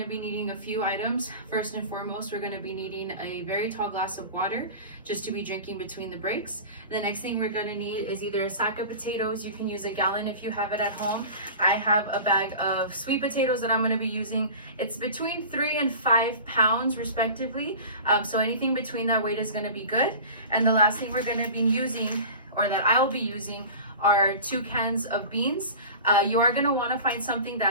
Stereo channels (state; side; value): inverted; both; correlation -0.36